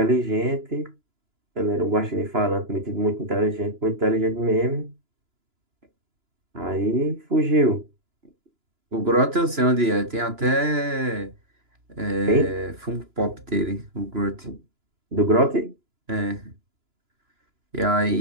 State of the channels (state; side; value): late; left; 2.9 ms